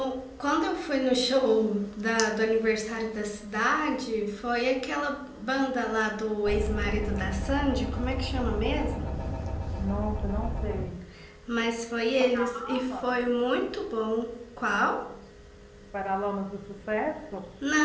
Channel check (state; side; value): identical; both; correlation 1.00